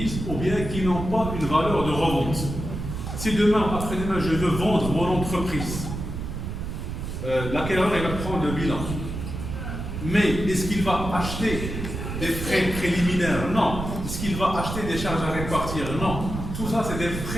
ou bien qui n'ont pas une valeur de revente. Si demain, après-demain, je veux vendre mon entreprise, l'acquéreur va prendre le bilan. Mais est-ce qu'il va acheter des frais préliminaires? Non. Est-ce qu'il va acheter des charges à répartir? Non. Tout ça, c'est des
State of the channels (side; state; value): right; noise; rumble, 6 dB below the sound